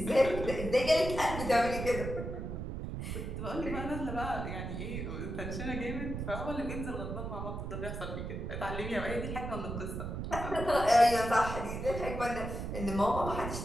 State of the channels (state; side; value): noise; right; rumble, 5 dB below the sound